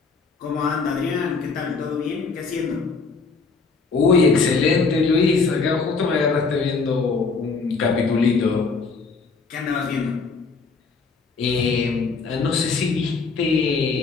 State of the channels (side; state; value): right; quieter; 4.5 dB